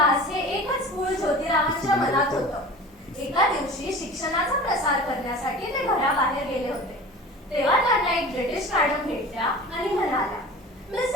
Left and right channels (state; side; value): normal; both; correlation 0.38